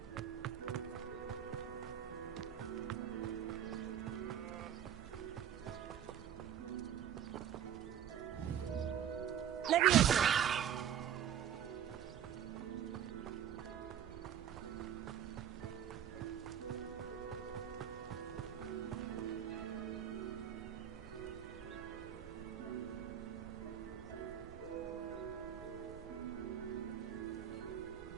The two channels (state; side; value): quieter; left; 9.8 dB